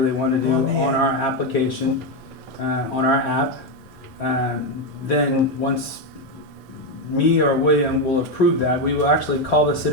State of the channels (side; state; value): both; normal; correlation 0.08